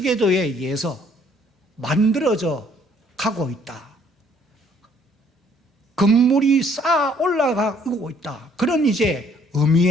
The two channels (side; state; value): both; normal; correlation 0.63